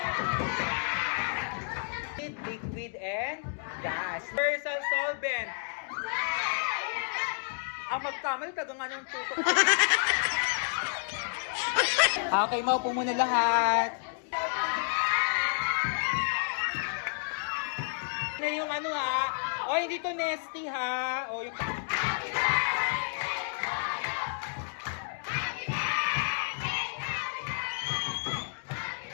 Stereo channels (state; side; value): silent; right; digital silence